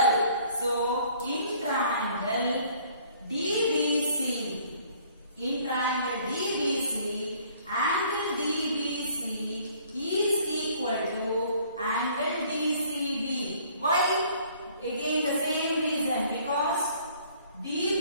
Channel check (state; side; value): inverted; both; correlation -0.58